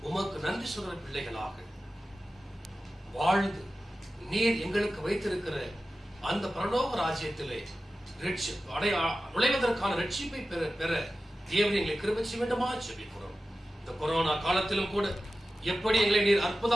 உமக்கு நன்றி சொல்ற பிள்ளைகளாக வாழ்ந்து நீர் எங்களுக்கு வைத்திருக்கிற அந்த பரலோக ராஜ்யத்திலே நுழைவதற்கான ரட்சிப்பை பெற தேவன் எங்களை கிருபை செய்ய வேண்டுமா ஜெபிக்கிறோம். இந்த கொரோனா காலத்திலும் கூட எப்படி எங்களை நீர்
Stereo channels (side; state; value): both; normal; correlation 0.94